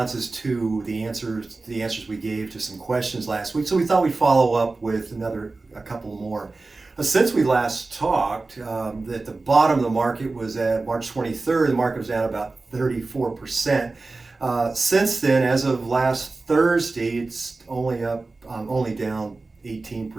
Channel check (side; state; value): left; quieter; 3.5 dB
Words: to the answers we gave to some questions last week, so we thought we'd follow up with a couple more. Since we last talked, at the bottom of the market was at March 23rd. The market was down about 34%. Since then, as of last Thursday, it's only down